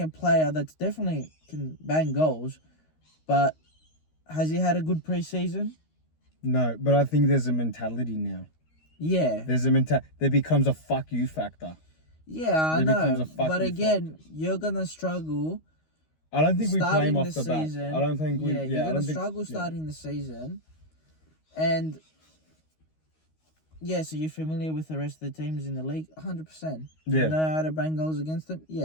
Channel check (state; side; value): late; right; 13 ms